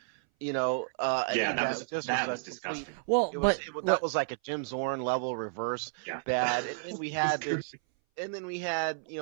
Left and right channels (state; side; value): silent; left; 57 dB below the other